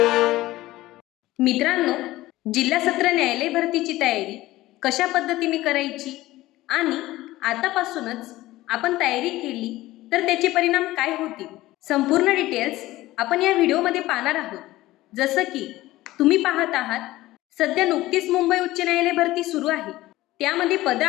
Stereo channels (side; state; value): right; quieter; 17.1 dB